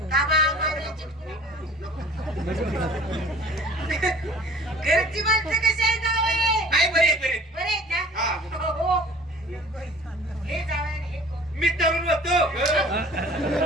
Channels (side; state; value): both; normal; correlation 0.48